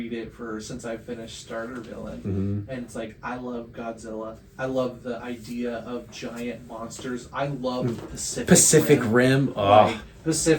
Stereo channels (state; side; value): identical; both; correlation 1.00